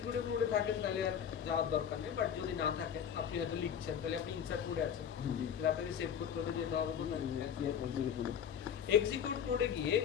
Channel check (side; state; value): right; quieter; 8.4 dB